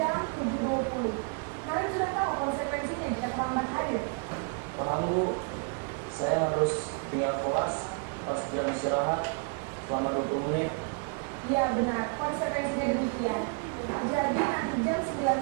7.20. Naren sudah tahu konsekuensinya jika terlambat hadir. Paham bu, saya harus tinggal kelas pas jam istirahat selama 20 menit. Iya benar, konsekuensinya demikian. Jadi nanti jam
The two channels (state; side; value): quieter; left; 36.2 dB